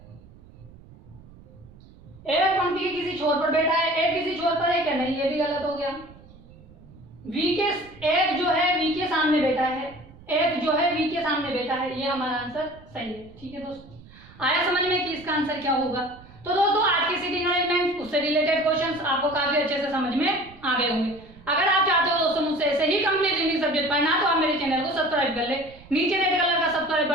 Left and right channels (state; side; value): noise; right; rumble, 22 dB below the sound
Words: एफ पंक्ति के किसी छोर पर बैठा है, एफ किसी छोर पर है क्या? नहीं, ये भी गलत हो गया। एफ जो है वी के सामने बैठा है, एफ जो है वी के सामने बैठा है, ये हमारा आंसर सही है। ठीक है दोस्तों, आया समझ में कि इसका आंसर क्या होगा? तो दोस्तों आज की सीटिंग अरेंजमेंट उससे रिलेटेड क्वेश्चंस आपको काफी अच्छे से समझ में आ गए होंगे। अगर आप चाहते हो दोस्तों मुझसे ऐसे ही कंप्लीट हिंदी सब्जेक्ट पढ़ना तो आप मेरे चैनल को सब्सक्राइब कर ले। नीचे रेड कलर का सब्सक्राइब